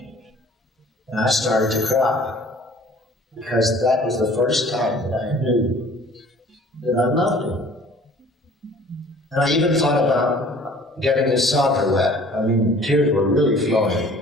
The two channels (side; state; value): both; normal; correlation 0.51